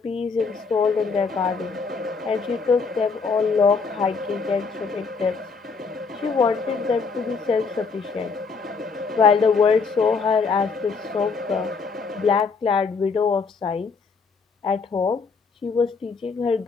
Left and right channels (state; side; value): quieter; right; 4.9 dB